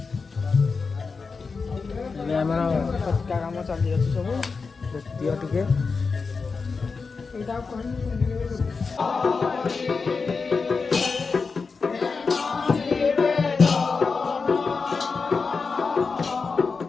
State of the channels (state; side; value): quieter; right; 4.7 dB